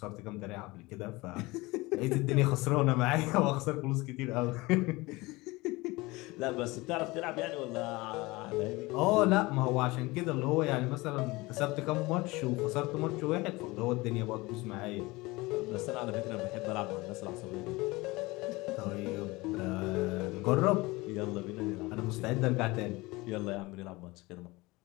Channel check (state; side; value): quieter; right; 22.2 dB